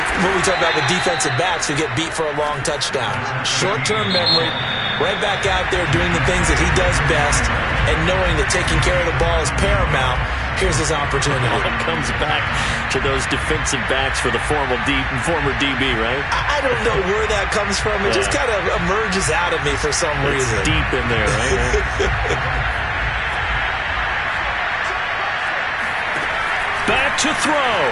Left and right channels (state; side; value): identical; both; correlation 1.00